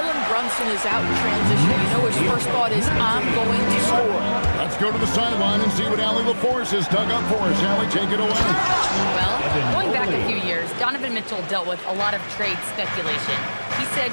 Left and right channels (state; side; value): inverted; both; correlation -1.00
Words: Brunson is out in transition, you know his first thought is, I'm going to score. Let's go to the sideline and see what Allie LaForce has dug up for us. Allie, take it away. Well, going back a few years, Donovan Mitchell dealt with a lot of trade speculation. He said,